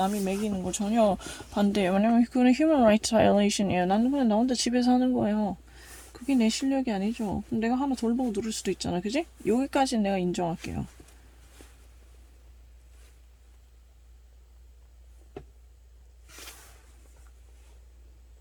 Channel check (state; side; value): identical; both; correlation 1.00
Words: 매기는 거 전혀 반대예요. 왜냐면 그거는 human rights violation이에요. 나는 그냥 나 혼자 집에서 하는 거예요. 그게 내 실력이 아니죠. 그럼 내가 하나 덜 보고 누를 수도 있잖아. 그지? 여기까지는 내가 인정할게요.